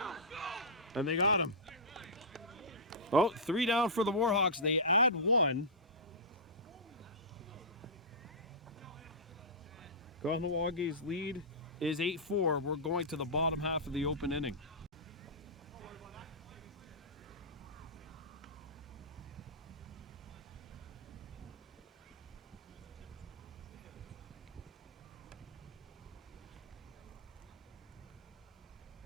And they got him. Oh, 3 down for the Warhawks. They add 1. Kahnawake's lead is 8-4. We're going to the bottom half of the open inning.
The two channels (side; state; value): both; normal; correlation -0.15